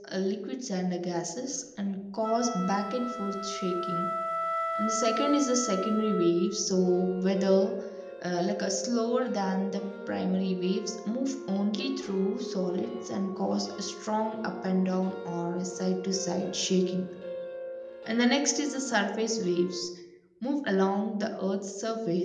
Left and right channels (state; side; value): identical; both; correlation 1.00